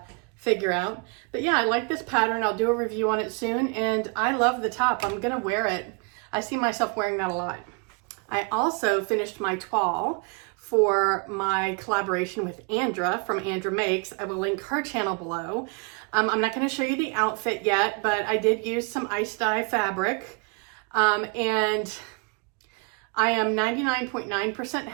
figure out. But yeah, I like this pattern. I'll do a review on it soon, and I love the top. I'm gonna wear it. I see myself wearing that a lot. I also finished my toile for my collaboration with Andra from Andra Makes. I will link her channel below. I'm not going to show you the outfit yet, but I did use some ice dye fabric, and I am 99.9%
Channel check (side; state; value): left; quieter; 33.7 dB